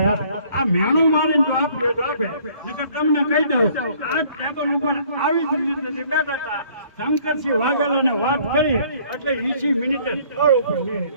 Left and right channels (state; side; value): inverted; both; correlation -0.59